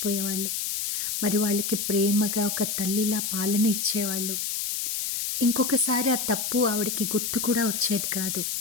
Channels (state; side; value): noise; left; hiss, 1 dB below the sound